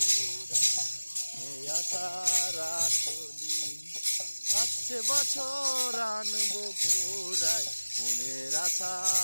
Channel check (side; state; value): both; inverted; correlation -1.00